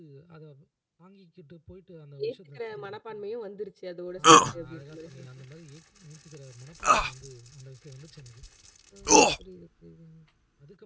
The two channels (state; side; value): identical; both; correlation 1.00